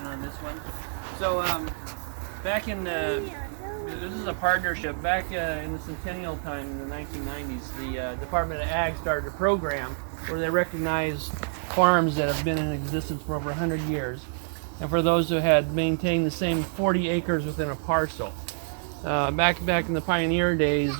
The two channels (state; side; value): silent; left; digital silence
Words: this one. So back in this is a partnership. Back in the centennial time in the 1990s, the Department of Ag started a program where they recognized farms that have been in existence for over 100 years, and for those who had maintained the same 40 acres within a parcel. Back in the pioneer days,